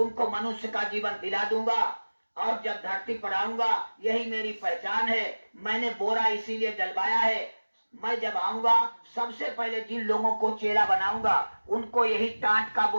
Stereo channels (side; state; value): both; inverted; correlation -1.00